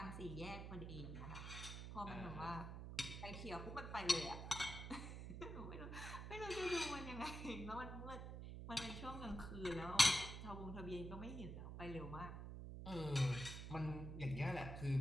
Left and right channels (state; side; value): noise; right; hum, 7 dB below the sound